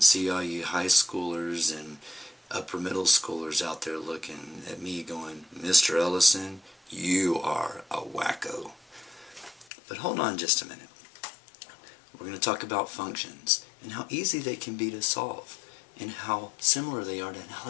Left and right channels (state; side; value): drops out; right; at 9.7 s